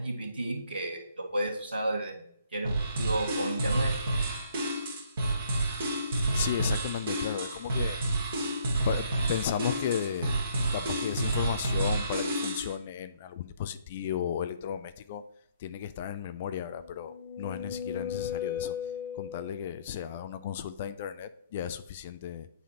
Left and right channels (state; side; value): inverted; both; correlation -0.66